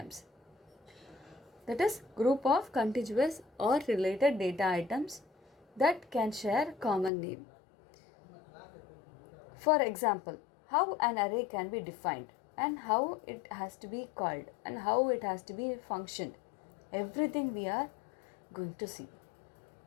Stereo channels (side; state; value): right; drops out; at 7.1 s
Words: That is, group of contiguous or related data items that can share common name. For example, how an array can be defined and how it has to be called and how it has to be functioned. Everything we are going to see.